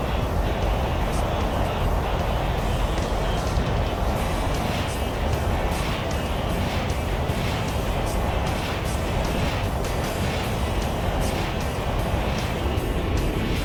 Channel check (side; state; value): both; identical; correlation 1.00